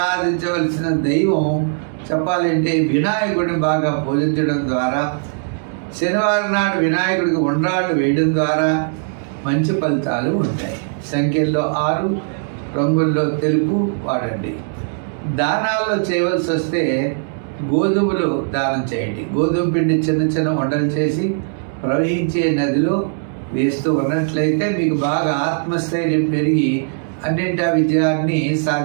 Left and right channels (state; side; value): silent; left; 67 dB below the other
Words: దైవం చెప్పాలంటే వినాయకుడిని బాగా పూజించడం ద్వారా, శనివారం నాడు వినాయకుడికి ఉండ్రాళ్ళు వేయడం ద్వారా మంచి ఫలితాలు ఉంటాయి. సంఖ్యల్లో 6, రంగుల్లో తెలుపు వాడండి. దానాల్లో చేయవలసి వస్తే గోధుమలు దానం చేయండి. గోధుమ పిండి చిన్న చిన్న వంటలు చేసి ప్రవహించే నదిలో వేస్తూ ఉన్నట్లయితే మీకు బాగా ఆత్మస్థైర్యం పెరిగి అన్నింటి విజయాన్ని